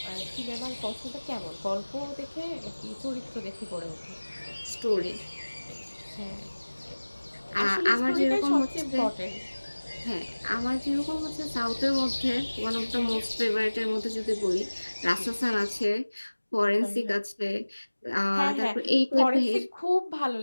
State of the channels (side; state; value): both; inverted; correlation -1.00